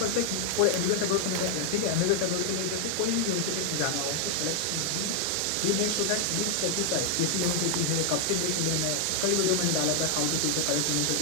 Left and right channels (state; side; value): different; both; correlation 0.00